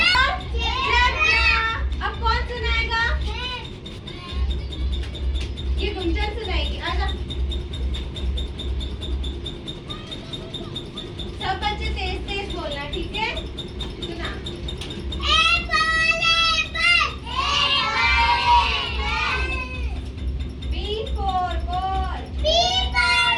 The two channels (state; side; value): identical; both; correlation 1.00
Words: अब कौन सुनाएगा? ये गुंजन सुनाएगी। आजा सब बच्चे तेज तेज बोलना, ठीक है? सुना। B for ball, E